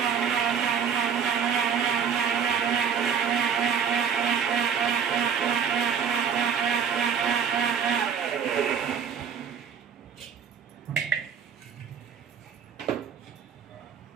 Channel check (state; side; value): quieter; left; 7.3 dB